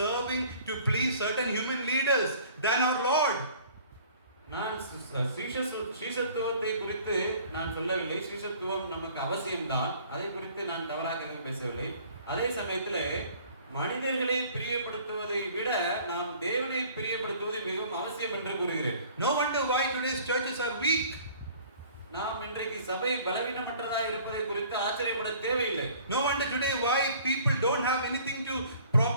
to please certain human leaders than our Lord. நான் சீஷத்துவத்தை குறித்து நான் சொல்லவில்லை. சீஷத்துவம் நமக்கு அவசியம்தான், அதை குறித்து நான் தவறாக எதுவும் பேசவில்லை. அதே சமயத்தில் மனிதர்களை பிரியப்படுத்துவதை விட நாம் தேவனை பிரியப்படுத்துவது மிகவும் அவசியம் என்று கூறுகிறேன். No wonder why today's churches are weak. நாம் இன்றைக்கு சபை பலவீனமற்றதா இருப்பதை குறித்து ஆச்சரியப்பட தேவையில்லை. No wonder today why people don't have anything to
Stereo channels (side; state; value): both; inverted; correlation -0.52